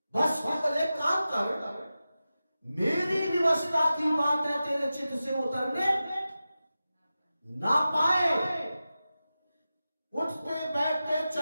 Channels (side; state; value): both; inverted; correlation -0.93